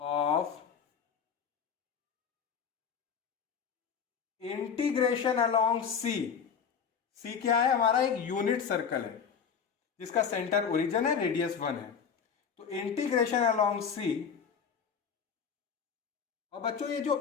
integration along C, C क्या है, हमारा एक यूनिट सर्कल है जिसका सेंटर ओरिजिन है, रेडियस 1 है। तो इंटीग्रेशन अलोंग सी, और बच्चों ये जो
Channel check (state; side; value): quieter; right; 6.8 dB